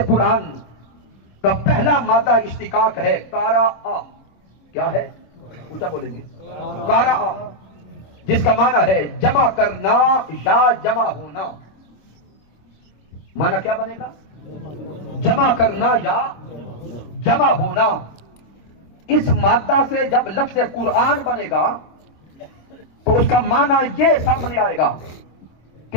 قرآن کا پہلا مادہ اشتقاق ہے کارا آ. کیا ہے؟ اونچا بولیں گے. کارا آ جس کا معنی ہے جمع کرنا یا جمع ہونا. معنی کیا بنے گا؟ جمع کرنا یا جمع ہونا. اس مادہ سے جب لفظ قرآن بنے گا تو اس کا معنی یہ سامنے آئے گا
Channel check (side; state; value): right; late; 26 ms